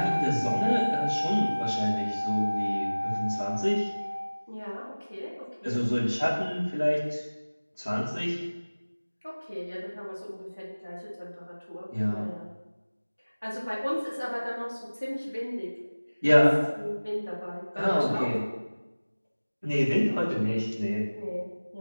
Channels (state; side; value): inverted; both; correlation -1.00